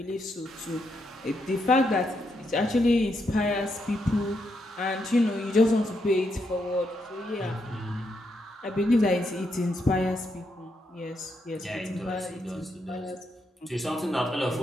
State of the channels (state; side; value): normal; both; correlation 0.80